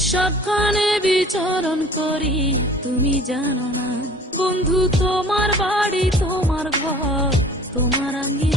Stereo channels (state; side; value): normal; both; correlation 0.48